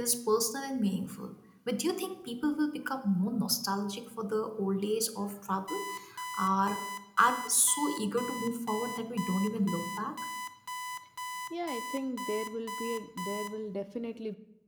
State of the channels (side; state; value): both; identical; correlation 1.00